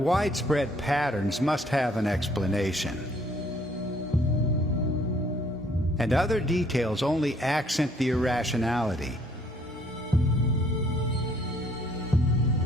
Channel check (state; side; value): normal; both; correlation 0.63